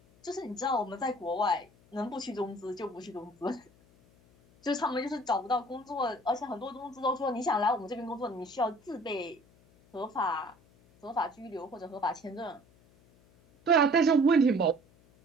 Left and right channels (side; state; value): left; noise; hum, 29 dB below the sound